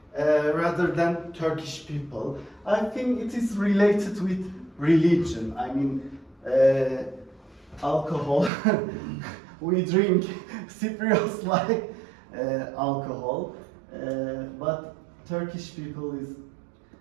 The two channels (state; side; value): drops out; left; at 8.5 s